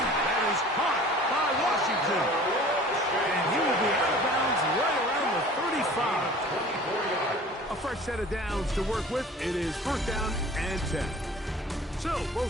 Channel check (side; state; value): both; normal; correlation 0.45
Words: That is caught by Washington. And he will be out of bounds right around the 35. A fresh set of downs to work with. It is 1st down and 10. So